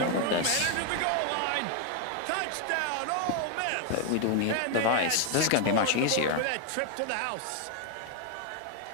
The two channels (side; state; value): both; different; correlation 0.01